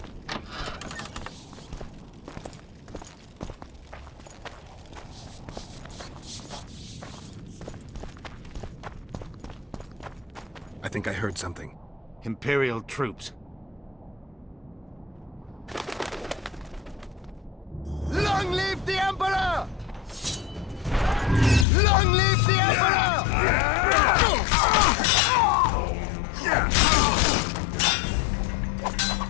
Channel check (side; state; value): right; drops out; at 21.7 s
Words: I think I heard something. Imperial troops. Long live the Emperor! Long live the Emperor!